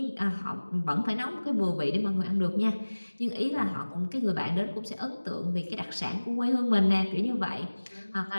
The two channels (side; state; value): both; inverted; correlation -1.00